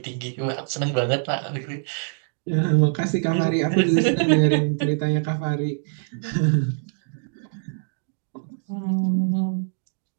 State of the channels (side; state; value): left; silent; digital silence